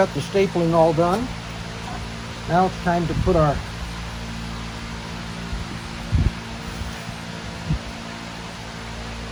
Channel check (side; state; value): both; identical; correlation 1.00